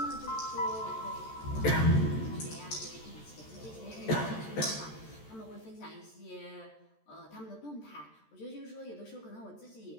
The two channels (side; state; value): right; late; 14 ms